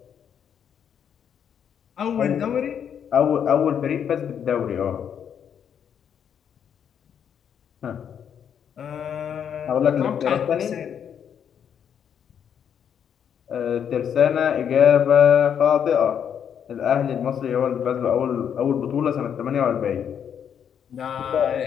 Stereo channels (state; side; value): quieter; right; 8.3 dB